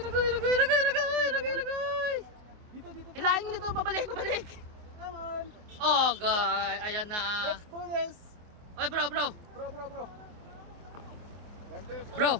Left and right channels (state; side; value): late; left; 24 ms